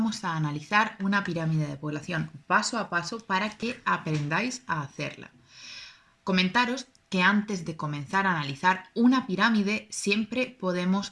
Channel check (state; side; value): identical; both; correlation 1.00